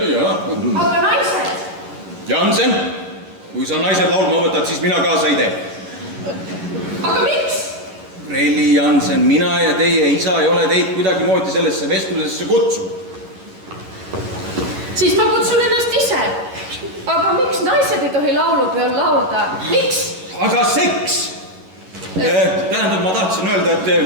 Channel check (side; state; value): left; late; 11 ms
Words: jah. Aga naised? Jansen, kui sa naised laulma võtad, siis mina kaasa ei tee. Aga miks? Relli Jansen, mina ja teie isa ei ole teid kuidagi moodi sellesse vestlusesse kutsunud. Siis ma kutsun ennast ise. Aga miks naised ei tohi laulupeol laulda? Miks? Aga seks! Tähendab, ma tahtsin öelda, et